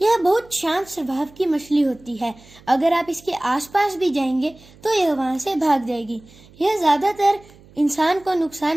यह बहुत शांत स्वभाव की मछली होती है। अगर आप इसके आसपास भी जाएंगे तो यह वहां से भाग जाएगी। यह ज्यादातर इंसान को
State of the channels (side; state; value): right; noise; hum, 25 dB below the sound